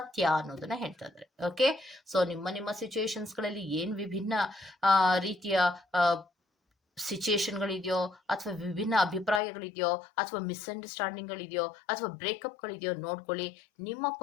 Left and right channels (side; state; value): right; drops out; at 9.4 s